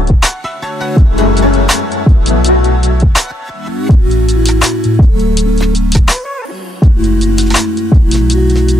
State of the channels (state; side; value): normal; both; correlation 0.81